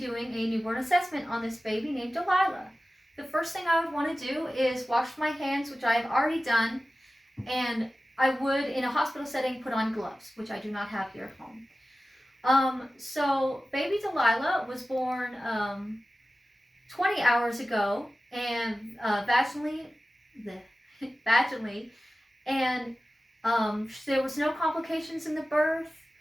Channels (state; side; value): normal; both; correlation 0.95